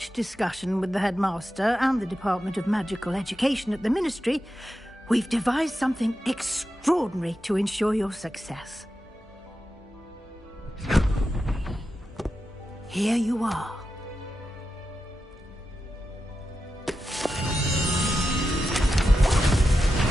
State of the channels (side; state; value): both; normal; correlation 0.90